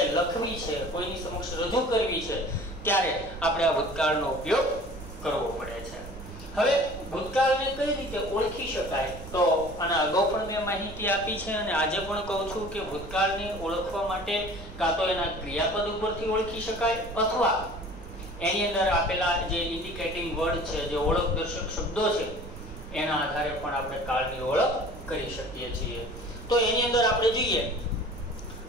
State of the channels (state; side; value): noise; right; rumble, 13 dB below the sound